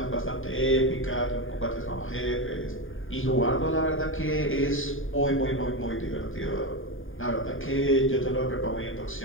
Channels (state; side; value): late; right; 0.59 ms